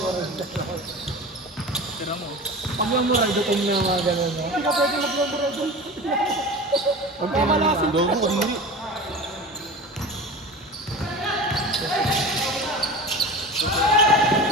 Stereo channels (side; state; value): both; normal; correlation 0.32